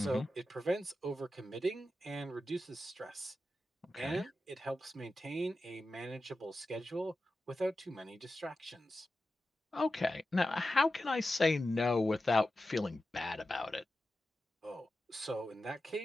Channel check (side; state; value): both; normal; correlation 0.92